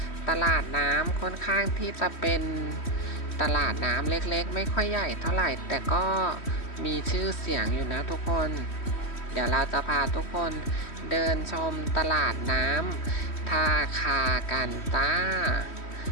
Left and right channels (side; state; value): right; late; 3.1 ms